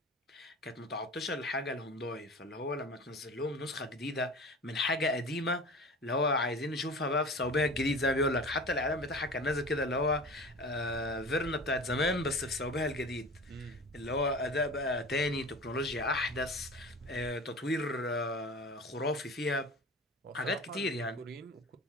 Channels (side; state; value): both; normal; correlation 0.36